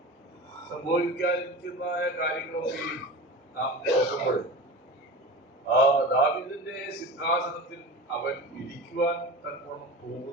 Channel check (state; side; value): normal; both; correlation 0.31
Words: സംഭവിക്കാതിരിക്കുന്നതായ കാര്യങ്ങളൊക്കെയും നാം നോക്കുമ്പോൾ ദാവീദിന്റെ സിംഹാസനത്തിൽ അവൻ ഇരിക്കുവാൻ തക്കവണ്ണം